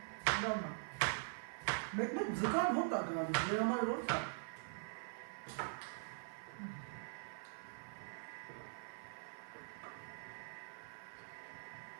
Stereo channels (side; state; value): left; silent; digital silence